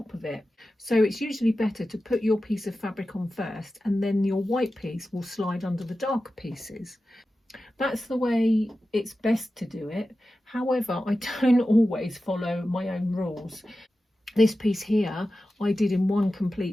of it. So it's usually better to put your piece of fabric on first, and then your white piece will slide under the darker pieces. That's the way it's best to do it. However, I don't always follow my own rules. This piece here I did in one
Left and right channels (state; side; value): normal; both; correlation 0.93